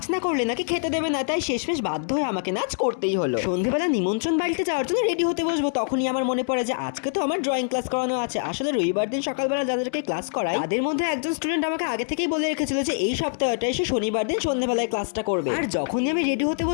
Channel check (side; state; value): right; silent; digital silence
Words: না করলে নাকি খেতে দেবে না, তাই শেষমেশ বাধ্য হয়ে আমাকে নাচ করতেই হলো। সন্ধ্যেবেলা নিমন্ত্রণ বাড়িতে যাওয়ার জন্য রেডি হতে বসবো, তখনই আমার মনে পড়ে যে আজকে তো আমার ড্রয়িং ক্লাস করানো আছে। আসলে রবিবার দিন সকালবেলা যাদেরকে ক্লাস করায় তাদের মধ্যে একজন স্টুডেন্ট আমাকে আগে থেকেই বলে রেখেছিল যে এই সপ্তাহটা এসে শনিবার দিন সন্ধ্যেবেলায় ক্লাসটা করবে। আর যখনই আমি রেডি হতে